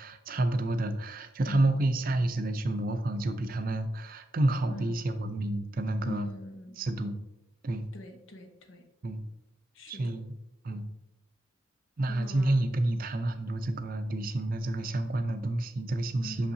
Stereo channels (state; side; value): normal; both; correlation 0.88